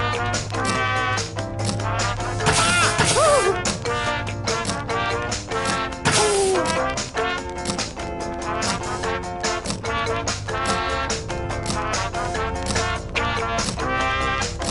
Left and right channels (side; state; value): both; identical; correlation 1.00